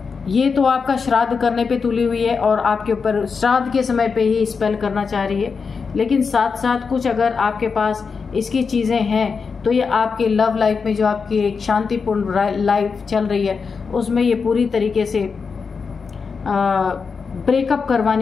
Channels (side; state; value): right; quieter; 5.3 dB